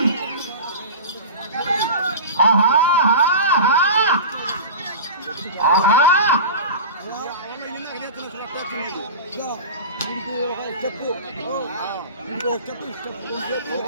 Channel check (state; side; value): inverted; both; correlation -0.31